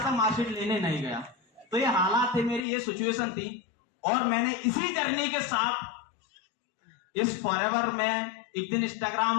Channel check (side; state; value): right; drops out; at 2.6 s